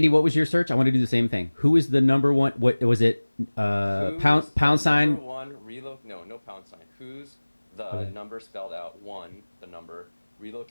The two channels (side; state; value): both; inverted; correlation -1.00